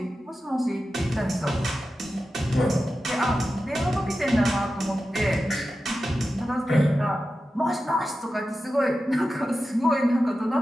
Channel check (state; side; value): normal; both; correlation 0.92